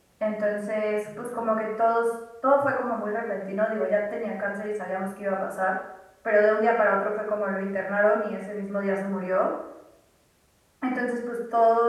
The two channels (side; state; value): both; identical; correlation 1.00